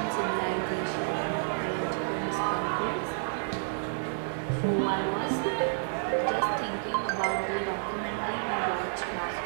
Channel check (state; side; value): silent; left; digital silence